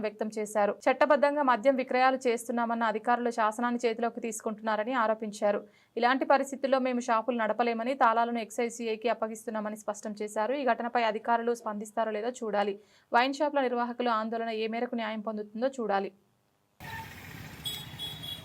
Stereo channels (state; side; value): identical; both; correlation 1.00